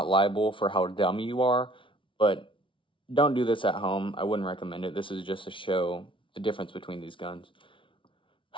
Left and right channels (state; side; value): late; right; 0.25 ms